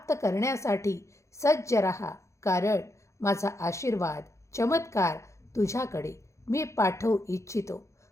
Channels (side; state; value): right; late; 0.14 ms